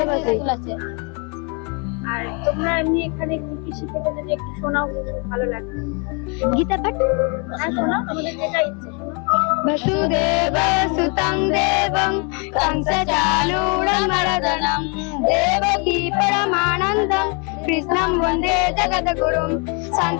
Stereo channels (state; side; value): quieter; right; 34.9 dB